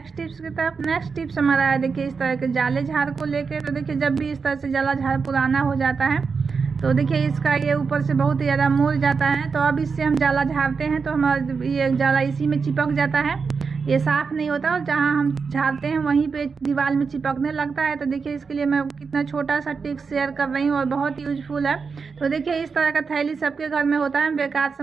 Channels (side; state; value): left; quieter; 5.2 dB